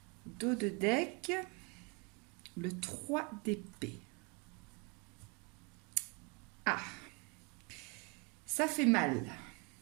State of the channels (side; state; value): left; quieter; 32.0 dB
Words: Dos de deck, le 3 d'épée. Ah, ça fait mal.